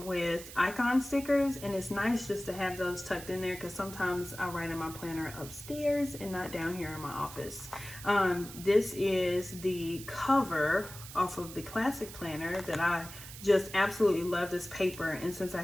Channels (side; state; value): right; noise; hiss, 14 dB below the sound